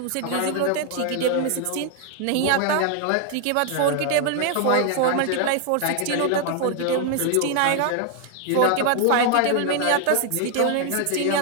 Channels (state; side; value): different; both; correlation 0.00